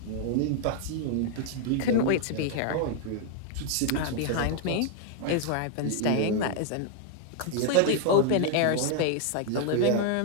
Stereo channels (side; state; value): both; different; correlation -0.01